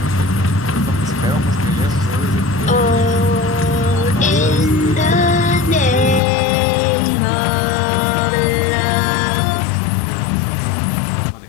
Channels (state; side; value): drops out; right; at 6.2 s